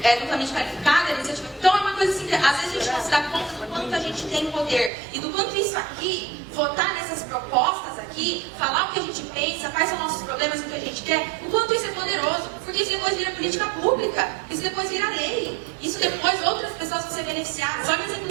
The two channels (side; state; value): left; drops out; at 4.9 s